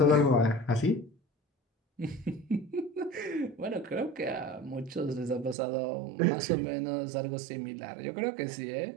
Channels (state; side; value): drops out; left; at 5.6 s